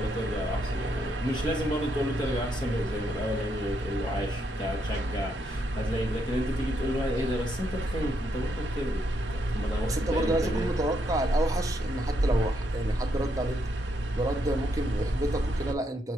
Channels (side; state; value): both; normal; correlation 0.77